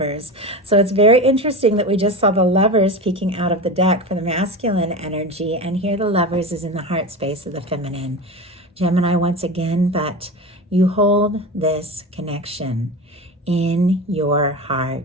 So it's very interesting that we just saw the Lovers peeking out of the deck for the masculine energy, and here the Lovers is in the heart space of the feminine. Gemini once again, but you hold this connection in your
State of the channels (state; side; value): normal; both; correlation 0.26